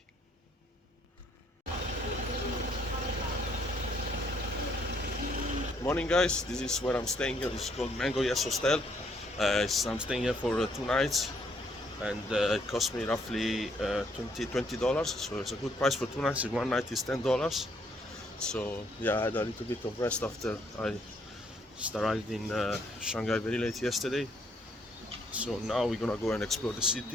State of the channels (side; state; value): both; normal; correlation 0.69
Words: Morning guys, this is where I'm staying here. It's called Mango Yes Hostel. I'm staying here for 2 nights, and it cost me roughly $20. So it's a good price for 2 nights. 1 night is $10. So yeah, I had a little bit of rest after I just arrived in Shanghai very late yesterday. So now we're gonna go and explore the